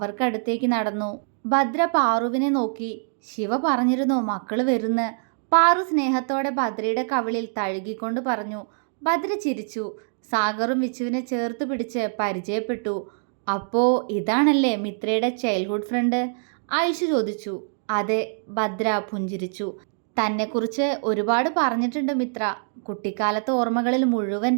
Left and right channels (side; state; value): left; silent; digital silence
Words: നടന്നു. ഭദ്ര പാറുവിനെ നോക്കി. ശിവ പറഞ്ഞിരുന്നു മക്കള് വരുന്ന്. പാറു സ്നേഹത്തോടെ ഭദ്രയുടെ കവിളിൽ തഴുകിക്കൊണ്ട് പറഞ്ഞു. ഭദ്ര ചിരിച്ചു. സാഗറും വിച്ചുവിനെ ചേർത്ത് പിടിച്ച് പരിചയപ്പെട്ടു. അപ്പോ ഇതാണല്ലേ മിത്രയുടെ ചൈൽഡ്ഹുഡ് ഫ്രണ്ട്? ഐഷു ചോദിച്ചു. അതെ, ഭദ്ര പുഞ്ചിരിച്ചു. തന്നെക്കുറിച്ച് ഒരുപാട് പറഞ്ഞിട്ടുണ്ട് മിത്ര. കുട്ടിക്കാലത്തെ ഓർമ്മകളിൽ മുഴുവൻ